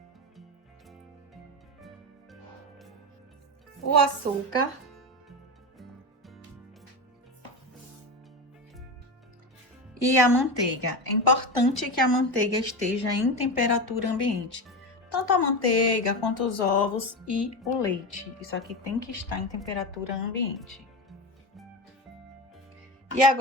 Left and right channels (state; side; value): normal; both; correlation 0.20